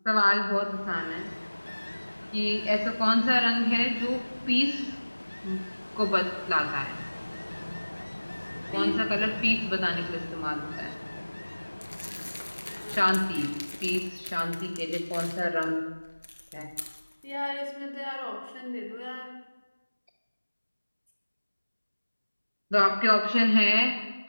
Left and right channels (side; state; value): both; inverted; correlation -1.00